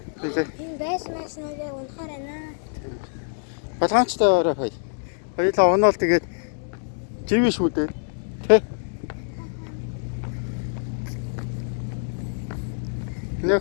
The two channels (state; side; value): silent; right; digital silence